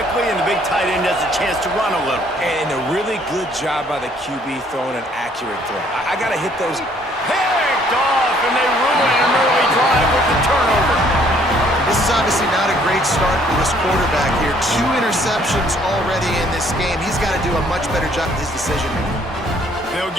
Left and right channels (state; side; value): normal; both; correlation 0.62